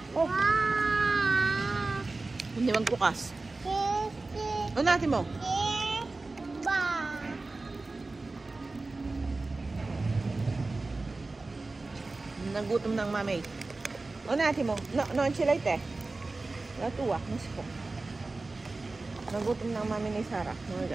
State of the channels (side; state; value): left; quieter; 3.4 dB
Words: Oh. Hindi magbukas. O natin mo. Nagutom ng mami. O natin mo. No, enchilate eh. Natuwa. Mas po. Nagutom ng mami ni Sarah. Mga